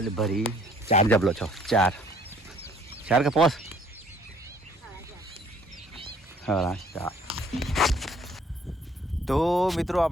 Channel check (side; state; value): both; normal; correlation 0.59